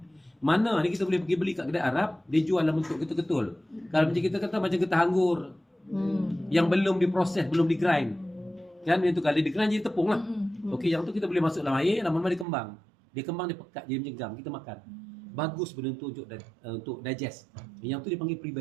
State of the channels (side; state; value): left; drops out; at 12.5 s